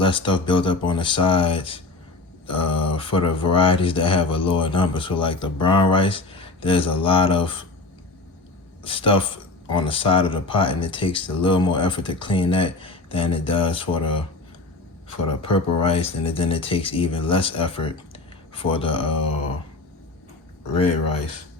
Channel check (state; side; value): quieter; right; 3.3 dB